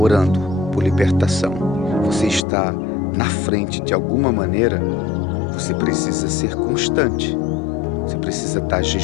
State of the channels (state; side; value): drops out; right; at 2.5 s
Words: por libertação, você está na frente de alguma maneira, você precisa ser constante. Você precisa estar